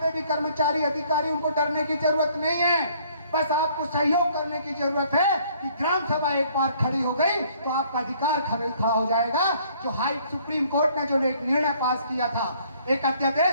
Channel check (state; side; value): inverted; both; correlation -0.61